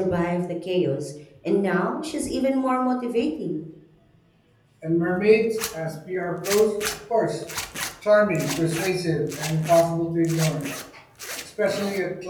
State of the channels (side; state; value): both; identical; correlation 1.00